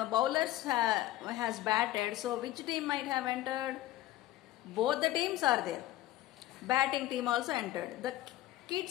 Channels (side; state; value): right; quieter; 15.3 dB